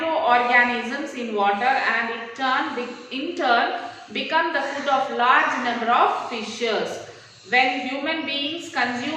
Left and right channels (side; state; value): both; identical; correlation 1.00